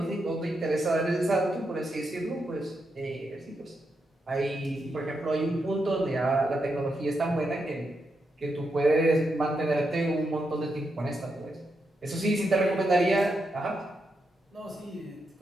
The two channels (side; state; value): both; normal; correlation 0.84